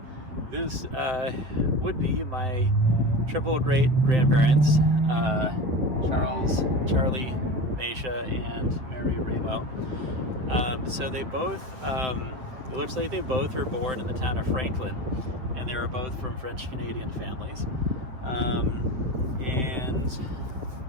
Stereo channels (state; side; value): late; left; 7.8 ms